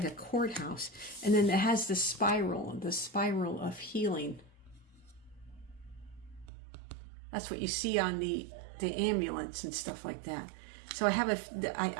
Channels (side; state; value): left; drops out; at 6.5 s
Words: a courthouse. And then it has the spiral of healing. That's what you see on the ambulance and stuff like that. So